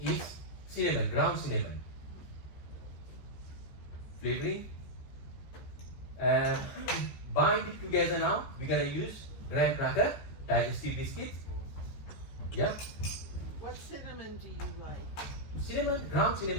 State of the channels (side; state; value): right; late; 14 ms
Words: cinnamon, ground cinnamon. Flavoring. Bind it together now, we're gonna use graham cracker, digestive biscuits. Yeah? What cinnamon do you like? Cinnamon, ground